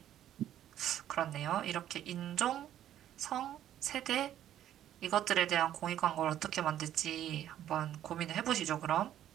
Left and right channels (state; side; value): quieter; left; 11.5 dB